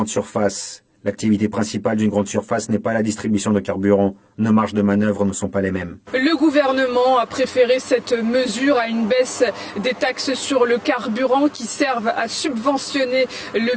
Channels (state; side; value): identical; both; correlation 1.00